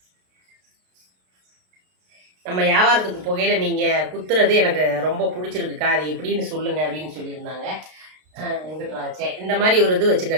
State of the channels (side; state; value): left; late; 32 ms